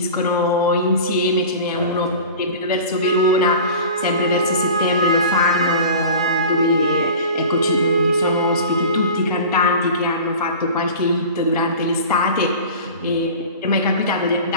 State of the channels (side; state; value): both; inverted; correlation -0.37